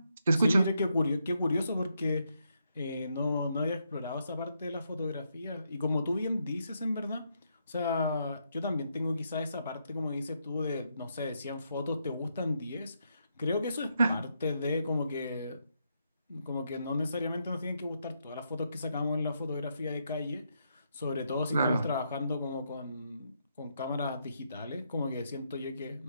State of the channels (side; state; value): both; inverted; correlation -0.79